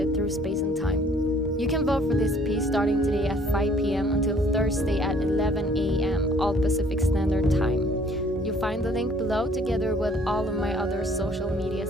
through space and time. You can vote for this piece starting today at 5 p.m. until Thursday at 11 a.m. all Pacific Standard Time. You'll find the link below together with all of my other social media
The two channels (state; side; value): normal; both; correlation 0.58